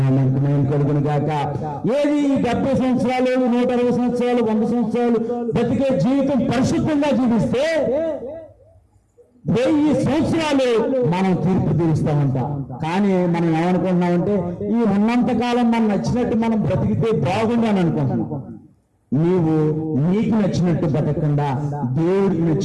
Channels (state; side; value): identical; both; correlation 1.00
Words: మహిమ కలుగును గాక. ఏది 70 సంవత్సరాలు, 160 సంవత్సరాలు, 100 సంవత్సరాలు బతికే జీవితం పరిశుద్ధంగా జీవిస్తే 1000 సంవత్సరాలు మనం తీర్పు తీరుస్తామంట. కానీ మనం ఏమనుకుంటున్నామంటే ఈ ఉన్నంత కాలం మనం నచ్చినట్టు మనం బ్రతికితే బాగుంది అని అనుకుంటున్నాం. నీవు నీకు నచ్చినట్టు బతకకుండా దేవుడికి